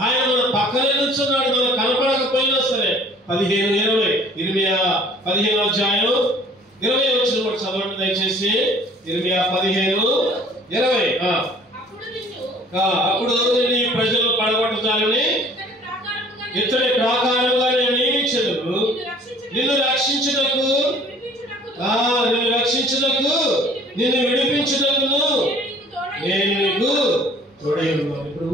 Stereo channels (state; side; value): normal; both; correlation 0.52